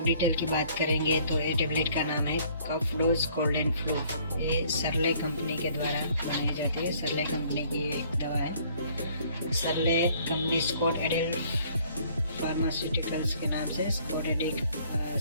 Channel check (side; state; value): both; inverted; correlation -0.59